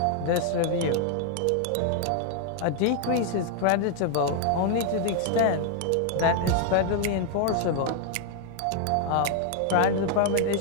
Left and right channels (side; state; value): both; different; correlation 0.00